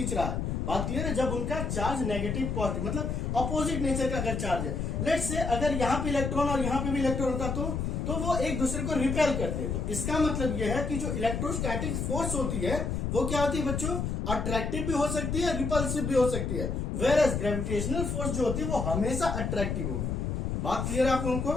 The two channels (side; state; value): left; noise; rumble, 1 dB below the sound